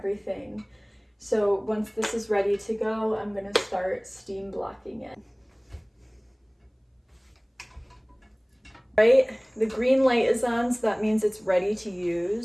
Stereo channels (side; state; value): both; identical; correlation 1.00